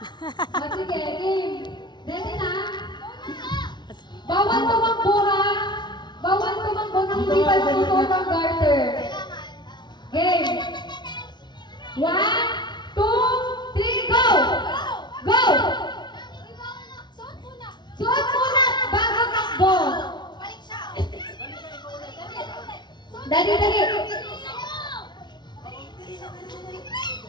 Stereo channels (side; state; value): right; late; 0.21 ms